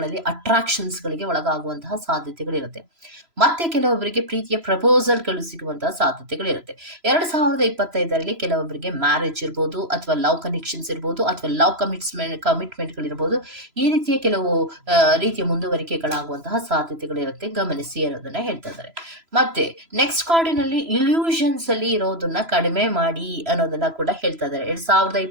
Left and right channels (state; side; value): late; left; 3.0 ms